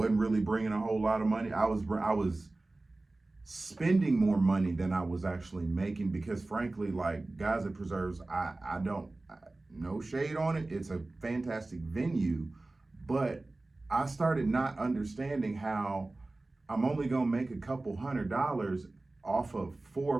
really bringing a whole lot of money? I was spending more money than I was actually making, because frankly, like, guys at preserves, no shade on it, it's a fantastic venue, but I started not understanding how I'm only gonna make a couple $100 off of 4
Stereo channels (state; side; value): quieter; left; 3.0 dB